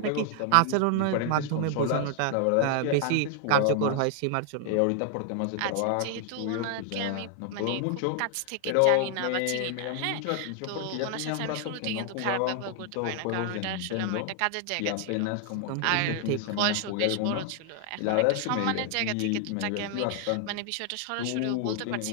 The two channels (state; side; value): different; both; correlation 0.00